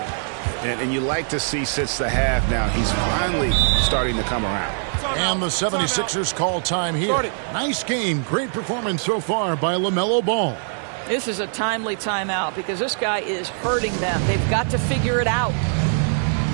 And you like to see since the half now, he's finally starting to come around. And the 76ers call time here. Nice game. Great performance so far by LaMelo Ball. This is a timely timeout because this guy is hurting them. They've got to figure it out.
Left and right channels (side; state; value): left; silent; 64 dB below the other